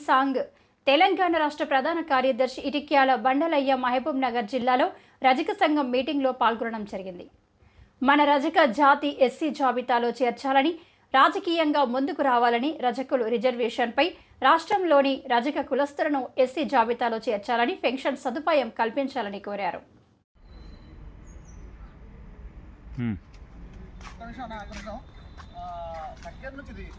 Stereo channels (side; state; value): both; identical; correlation 1.00